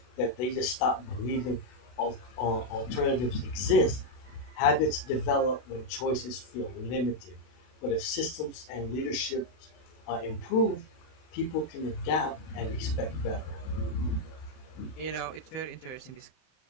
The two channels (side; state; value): right; late; 32 ms